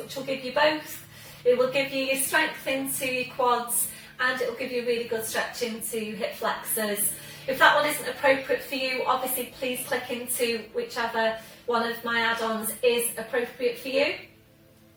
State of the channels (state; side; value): identical; both; correlation 1.00